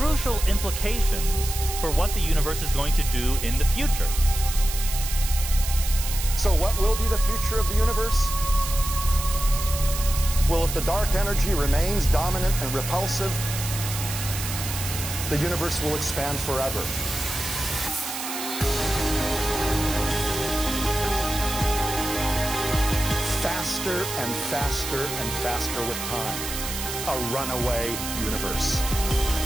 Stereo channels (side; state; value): right; noise; hiss, 6 dB below the sound